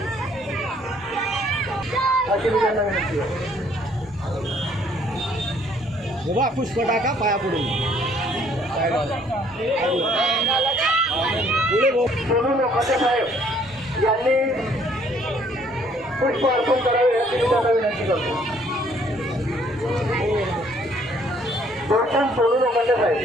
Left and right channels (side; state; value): both; normal; correlation 0.63